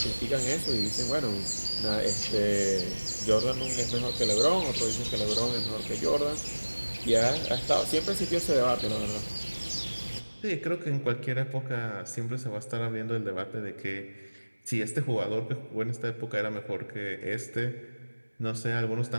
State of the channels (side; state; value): both; inverted; correlation -1.00